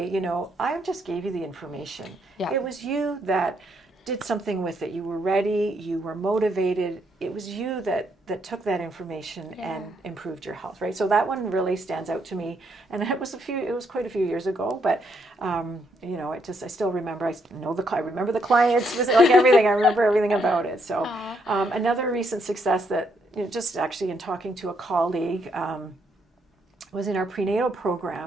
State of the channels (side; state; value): both; normal; correlation 0.75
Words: I just gave you the information. It was you that did something with it. You were ready, you were motivated. It was you that took that information and improved your health, right? So that one really stands out to me. And it was quite a few years ago, but I still remember, I remember the clients, like everything, I remember everything about it. So another recent success that, just actually in talking to a colleague, was in our prenatal